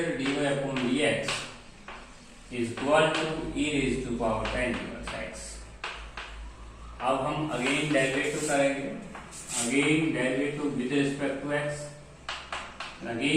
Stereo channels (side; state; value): both; identical; correlation 1.00